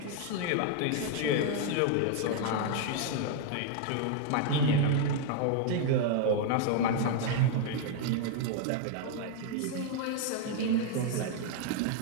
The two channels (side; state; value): both; different; correlation 0.00